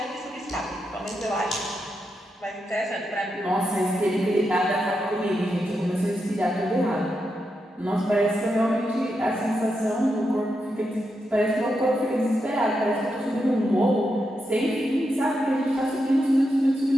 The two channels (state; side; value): normal; both; correlation 0.85